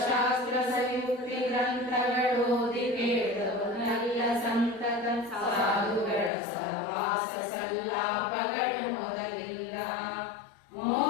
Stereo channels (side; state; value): right; drops out; at 6.3 s